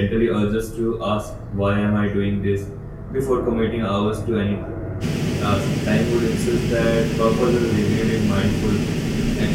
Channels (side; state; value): both; identical; correlation 1.00